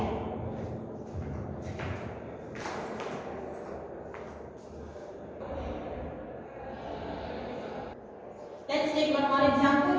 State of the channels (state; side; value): identical; both; correlation 1.00